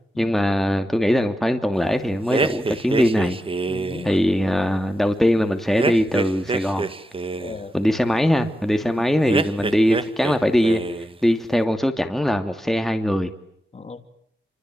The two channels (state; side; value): normal; both; correlation 0.89